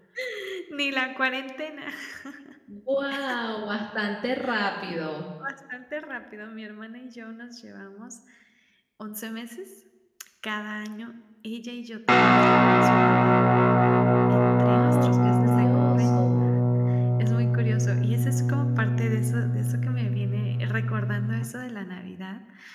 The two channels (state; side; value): identical; both; correlation 1.00